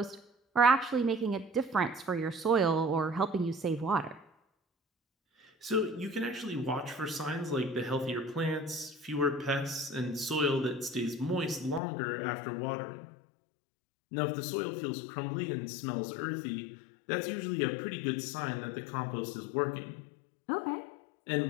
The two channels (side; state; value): right; drops out; at 11.8 s